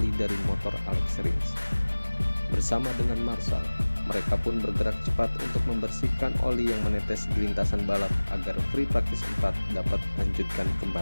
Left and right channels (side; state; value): both; inverted; correlation -1.00